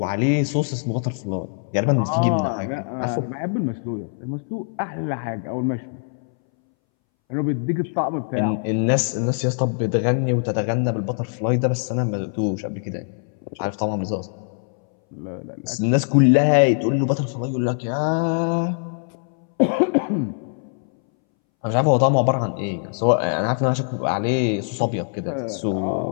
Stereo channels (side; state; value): right; silent; 63 dB below the other